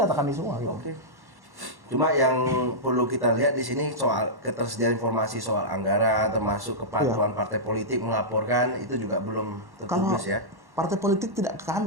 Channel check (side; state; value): left; late; 1.1 ms